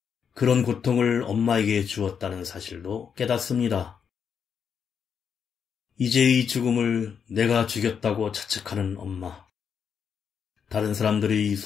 그런 고통을 엄마에게 주었다는 사실도 깨닫습니다. 이제의 죽음을 내가 죽였다고 자책하는 엄마. 다른 사람들의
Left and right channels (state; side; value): quieter; right; 7.1 dB